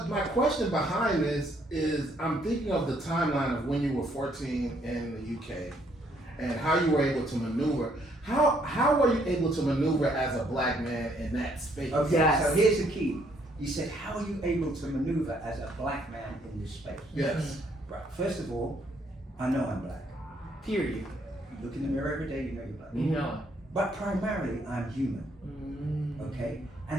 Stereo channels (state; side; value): normal; both; correlation 0.68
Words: my question behind this is I'm thinking of the timeline of when you were 14 in the UK and how you were able to maneuver. How were you able to maneuver as a black man in that space? Okay, Yes. so here's the key. You said, how are you able to maneuver as a black man in this space? Yes. Right. First of all, I know I'm black. Period. You look in the mirror every day, you know you're black. You know. But primarily, I'm human. Okay?